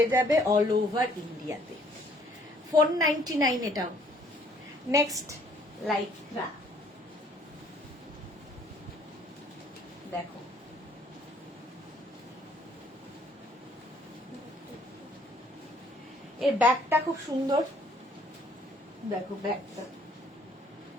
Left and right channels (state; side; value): normal; both; correlation 0.62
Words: যাবে অল ওভার ইন্ডিয়াতে। 499 এটাও। নেক্সট লাইক্রা দেখো, এর ব্যাগটা খুব সুন্দর, দেখো ব্যাগটা,